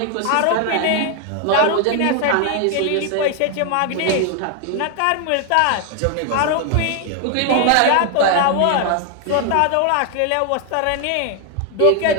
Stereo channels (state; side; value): different; both; correlation 0.00